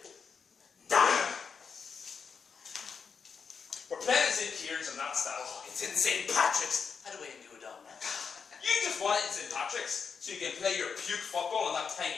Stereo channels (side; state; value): right; quieter; 6.0 dB